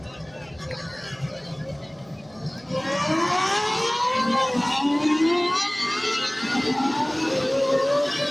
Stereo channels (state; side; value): noise; right; hum, 28 dB below the sound